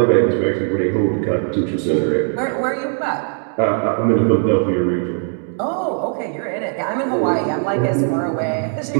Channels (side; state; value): left; silent; 55 dB below the other